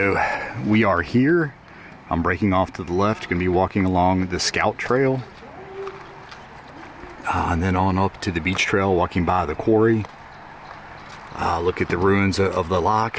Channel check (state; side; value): identical; both; correlation 1.00